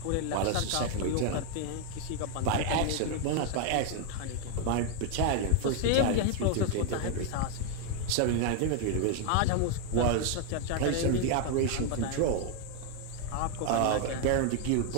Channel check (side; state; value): both; different; correlation 0.01